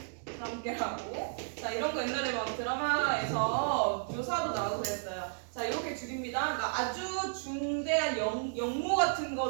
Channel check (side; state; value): left; silent; digital silence